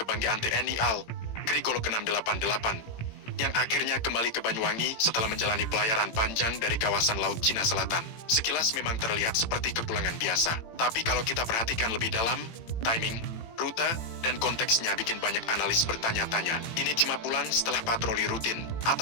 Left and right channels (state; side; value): late; right; 18 ms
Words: TNI AL, Grigolok 688, yang akhirnya kembali ke Banyuwangi setelah menjalani pelayaran panjang dari kawasan Laut Cina Selatan. Sekilas memang terlihat seperti kepulangan biasa, tapi kalau kita perhatikan lebih dalam, timing, rute, dan konteksnya bikin banyak analis bertanya-tanya. Ini cuma pulang setelah patroli rutin,